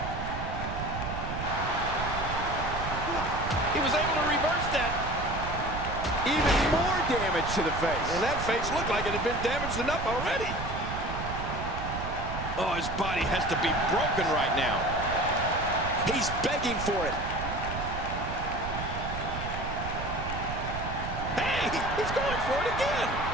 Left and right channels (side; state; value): right; noise; rumble, 6 dB below the sound